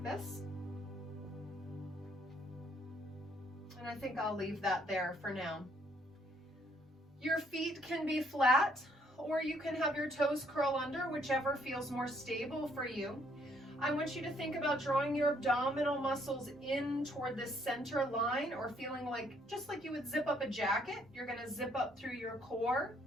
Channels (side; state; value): both; normal; correlation 0.67